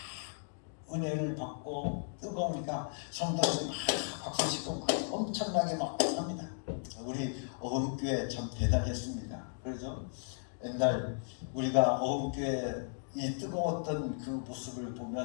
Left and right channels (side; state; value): right; silent; digital silence